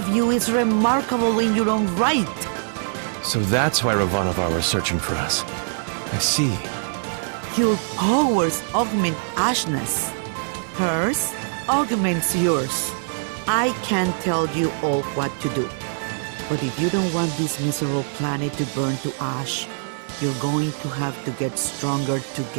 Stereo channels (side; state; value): left; silent; digital silence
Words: you is remarkable in your own right. So that's why Ravanavar was searching for us. I see. Your powers augment Ashna's. Hers augments yours. I can't tell you all what to do. But if you don't want this miserable planet to burn to ash, you're going to have to get stronger